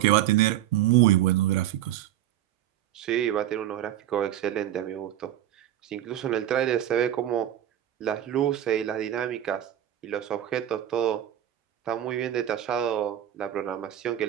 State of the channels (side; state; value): left; quieter; 11.9 dB